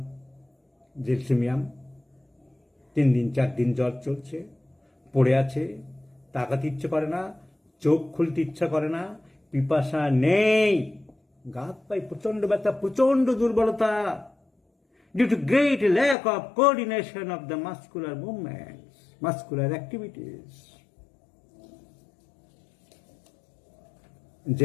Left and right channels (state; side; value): drops out; right; at 16.2 s